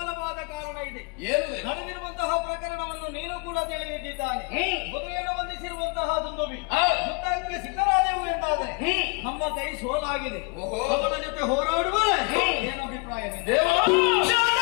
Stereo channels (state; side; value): quieter; right; 31.3 dB